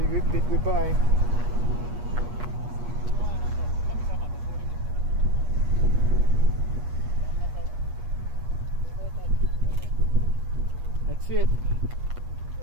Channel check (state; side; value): late; left; 8.3 ms